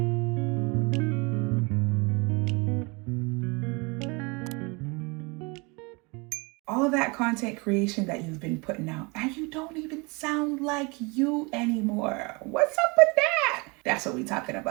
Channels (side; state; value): left; quieter; 28.6 dB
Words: All of that content creation that you've been putting out, and you don't even sound like you anymore. What's up with that? That's what we're talking